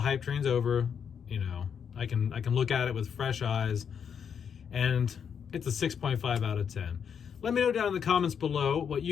train's over, you know, I can look at it with fresh eyes, and it's a 6.5 out of 10. Let me know down in the comments below what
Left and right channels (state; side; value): quieter; right; 7.4 dB